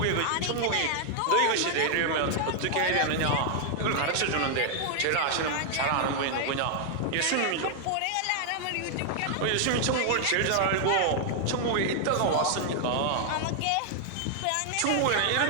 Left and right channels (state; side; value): different; both; correlation 0.00